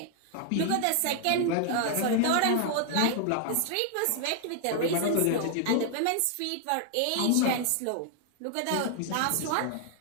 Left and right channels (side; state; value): both; different; correlation 0.00